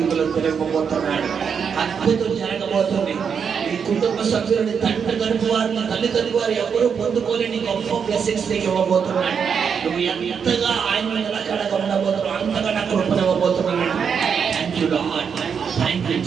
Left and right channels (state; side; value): quieter; left; 6.7 dB